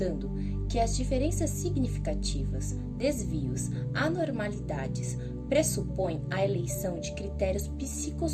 que as diferenças significativas, desvios, anormalidades pressupõem a eleição de critérios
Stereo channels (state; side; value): identical; both; correlation 1.00